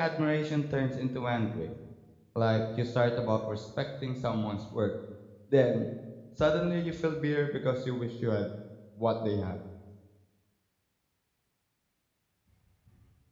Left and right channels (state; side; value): identical; both; correlation 1.00